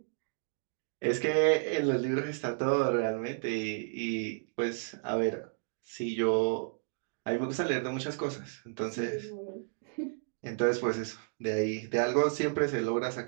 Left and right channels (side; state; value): left; silent; digital silence